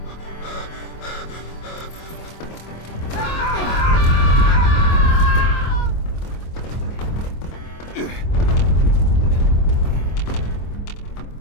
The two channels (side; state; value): right; late; 25 ms